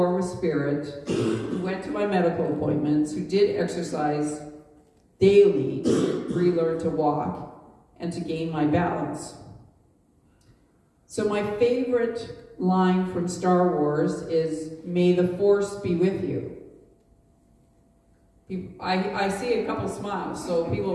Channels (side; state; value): both; identical; correlation 1.00